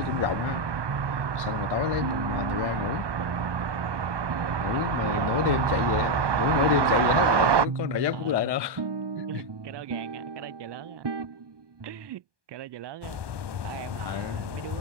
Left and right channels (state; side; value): late; left; 1.2 ms